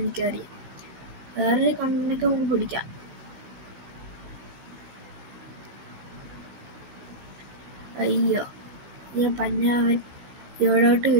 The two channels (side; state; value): left; late; 16 ms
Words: വേറൊരു കണ്ണൊക്കെ നമുക്ക് പിടിക്കാം. അയ്യോ, ഞാൻ പഞ്ഞാവൻ ഇവിടോട്ട്